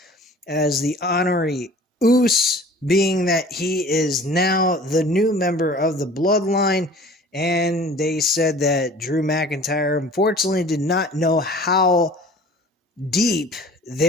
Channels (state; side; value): normal; both; correlation 0.46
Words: as the honorary Us being that he is now the new member of the Bloodline. And they said that Drew McIntyre unfortunately did not know how deep